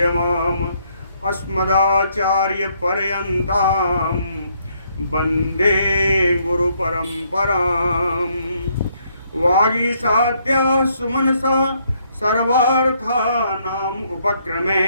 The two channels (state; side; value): inverted; both; correlation -0.71